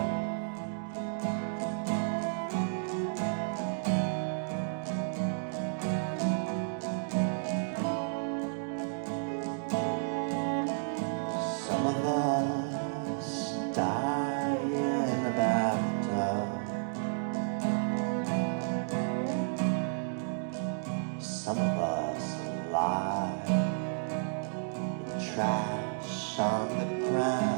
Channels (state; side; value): silent; left; digital silence